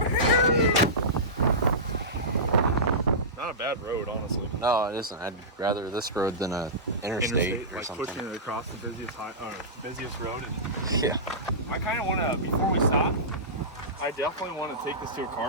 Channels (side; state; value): both; normal; correlation -0.18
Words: Not a bad road, honestly. No, it isn't. I'd rather this road than a interstate or like something. pushing it across the busiest road. And Yeah. I kind of want to, before we stop, I definitely want to take this to a